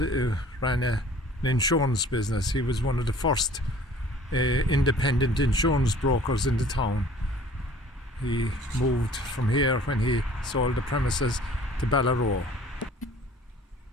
ran an insurance business. He was one of the first independent insurance brokers in the town. He moved from here when he sold the premises to Ballaroe.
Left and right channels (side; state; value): both; normal; correlation 0.51